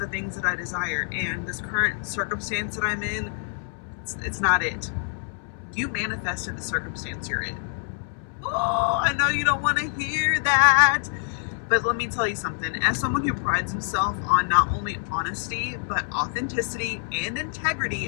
things that I desire. And this current circumstance that I'm in, it's not it. You manifested the circumstance you're in. Oh, I know you don't want to hear that, but let me tell you something. As someone who prides himself on not only honesty, but authenticity and integrity,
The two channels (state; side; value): silent; right; 61 dB below the other